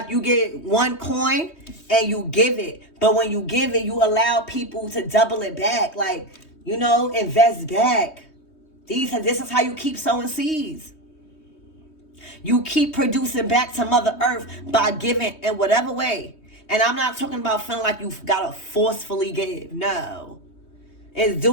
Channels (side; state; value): right; late; 3.2 ms